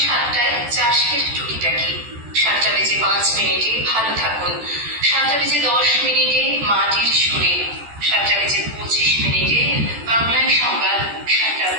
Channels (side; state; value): left; late; 14 ms